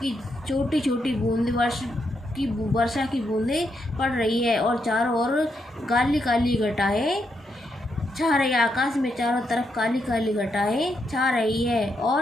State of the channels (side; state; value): both; normal; correlation 0.81